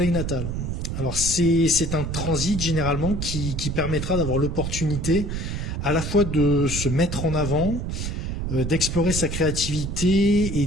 natal. Alors c'est un transit généralement qui permettra d'avoir l'opportunité à la fois de se mettre en avant, d'explorer sa créativité et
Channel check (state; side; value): noise; right; rumble, 3 dB below the sound